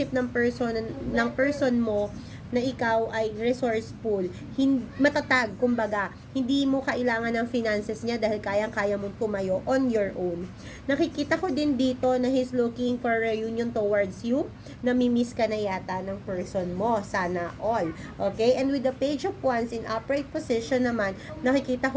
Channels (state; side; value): identical; both; correlation 1.00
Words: ng person mo na ikaw ay resourceful, matatag, kumbaga, hindi mo kailangan ng finances niya dahil kayang-kaya mong tumayo on your own. Nakikita ko din dito na he's looking for reunion towards you, namimiss ka na yata ng person mo, sana all. Okay? And with the Page of Wands in upright position naman, nakikita